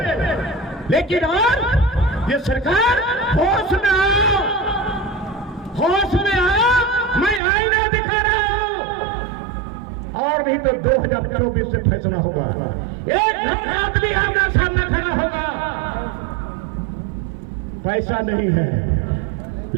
लेकिन और ये सरकार होश में आओ, होश में आओ। मैं आईना दिखा रहा हूं। और नहीं तो 2024 से फैसला होगा। एक आदमी आमना सामना खड़ा होगा। पैसा नहीं है,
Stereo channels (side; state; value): left; drops out; at 7.4 s